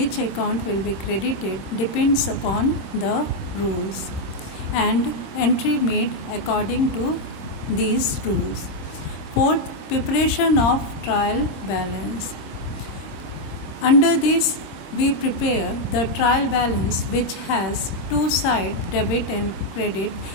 account will be credited depends upon the rules, and entry made according to these rules. Fourth, preparation of trial balance. Under this, we prepare the trial balance which has two sides, debit and credit,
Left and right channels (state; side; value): late; right; 26 ms